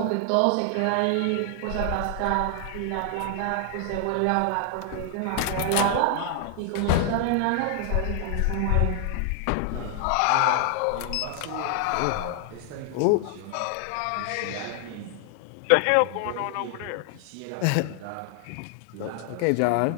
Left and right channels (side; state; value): both; different; correlation 0.00